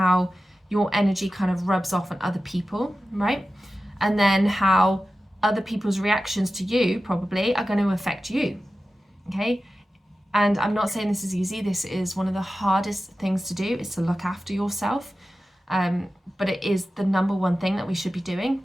your energy kind of rubs off on other people, right? And then how other people's reactions to you probably are going to affect you, okay? And I'm not saying this is easy. This is one of the hardest things to do, is to look after yourself. But it is the number one thing that we should be doing,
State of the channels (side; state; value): both; normal; correlation 0.94